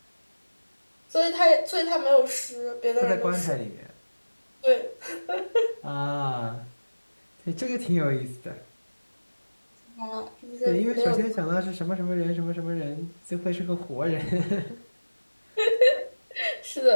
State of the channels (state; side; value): inverted; both; correlation -1.00